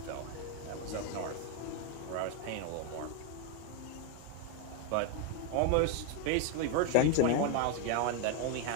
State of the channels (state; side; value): different; both; correlation 0.02